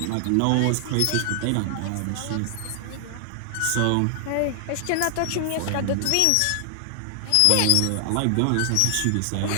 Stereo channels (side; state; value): both; different; correlation 0.00